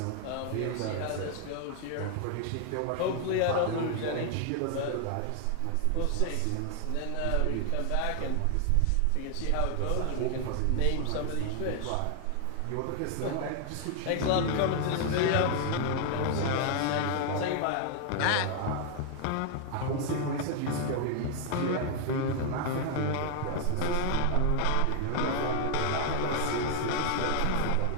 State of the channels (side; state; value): both; different; correlation 0.00